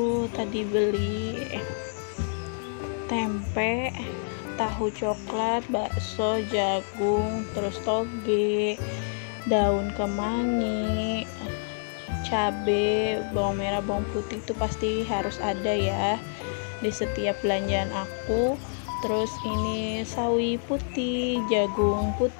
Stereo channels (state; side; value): silent; right; digital silence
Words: tadi beli tempe, tahu coklat, bakso, jagung, terus toge, daun kemangi, cabe, bawang merah, bawang putih itu pasti harus ada ya di setiap belanjaan aku. Terus ini sawi putih, jagung